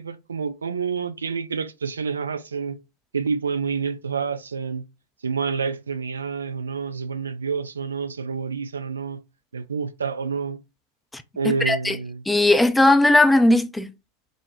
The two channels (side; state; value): both; normal; correlation 0.43